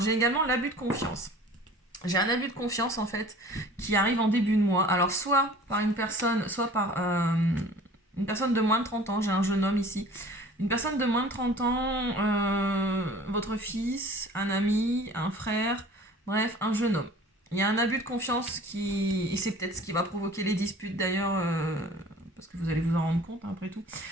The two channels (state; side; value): normal; both; correlation 0.46